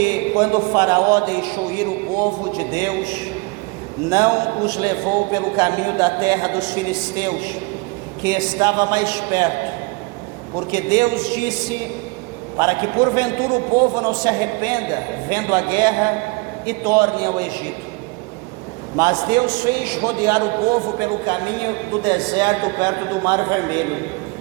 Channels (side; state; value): left; quieter; 27.6 dB